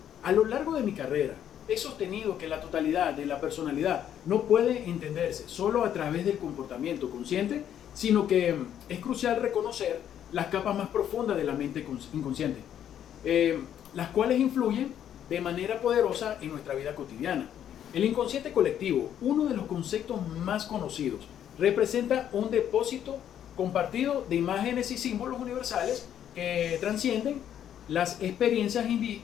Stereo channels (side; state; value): right; quieter; 10.0 dB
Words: A lo largo de mi carrera he sostenido que la totalidad de la personalidad no puede entenderse solo a través del comportamiento consciente, sino que es crucial reconocer las capas más profundas de la mente inconsciente, las cuales influyen de manera poderosa en nuestra vida cotidiana. El inconsciente colectivo, uno de los conceptos más conocidos, representa un depósito compartido de imágenes y símbolos universales que trascienden las experiencias